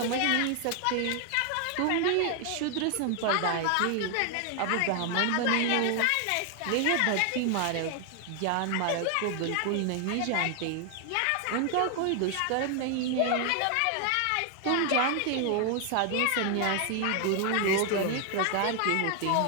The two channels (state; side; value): different; both; correlation 0.00